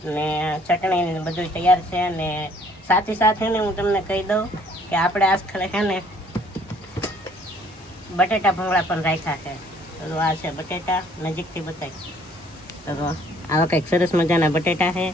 ને ચટણી ને બધું તૈયાર છે. ને સાથે ને હું તમને કહી દઉં કે આપણે આજકાલ છે ને બટેટા ભૂંગળા પણ રાખ્યા છે. તો આ છે બટેટા, નજીકથી બતાવી. તો આવા કંઈક સરસ મજાના બટેટા છે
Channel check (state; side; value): normal; both; correlation 0.60